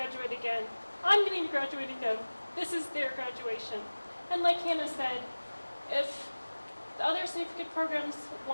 again, I'm getting to graduate again. This is their graduation. And like Hannah said, if the other certificate programs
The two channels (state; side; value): inverted; both; correlation -1.00